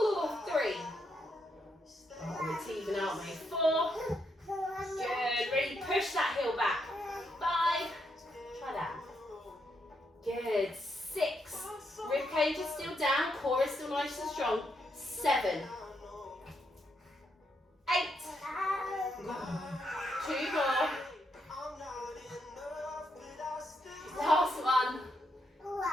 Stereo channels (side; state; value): both; normal; correlation 0.79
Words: 3. Oh, it's even, aren't we? 4. Good. Really push that heel back. 5. Try that. Good. 6. Rib cage is still down. Core is still nice and strong. 7. 8. 2 more. Last one.